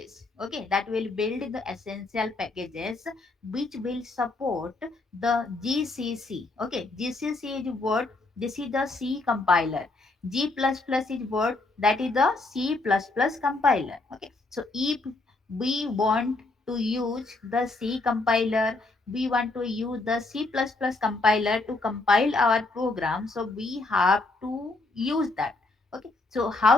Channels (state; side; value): quieter; right; 3.3 dB